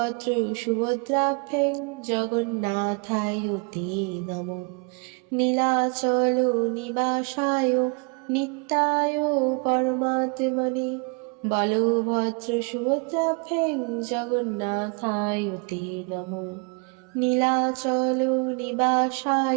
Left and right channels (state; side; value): quieter; left; 34.2 dB